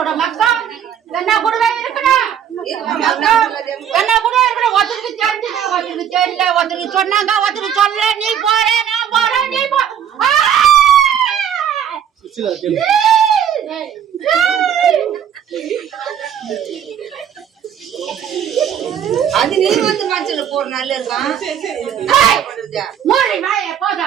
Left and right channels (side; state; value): left; quieter; 9.0 dB